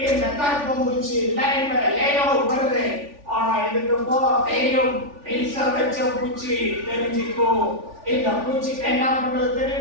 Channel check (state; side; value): late; left; 3.4 ms